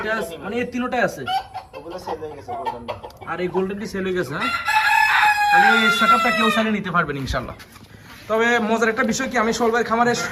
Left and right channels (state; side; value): identical; both; correlation 1.00